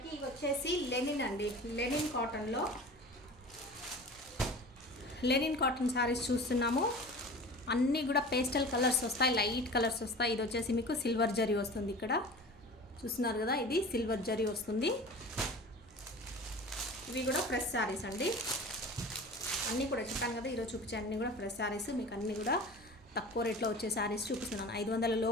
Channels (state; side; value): normal; both; correlation 0.38